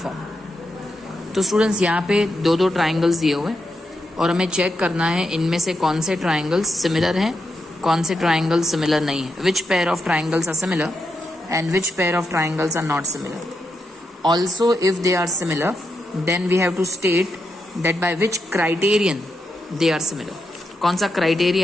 तो students यहाँ पे दो दो triangles दिए हुए हैं और हमें चेक करना है इनमें से कौन से ट्राइंगल्स सिमिलर हैं, कौन से ट्राइंगल्स सिमिलर नहीं है. Which pair of triangles are similar and which pair of triangles are not similar. Also, if they are similar, then we have to state that by which criterion they are similar. कौन सा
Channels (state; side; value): normal; both; correlation 0.85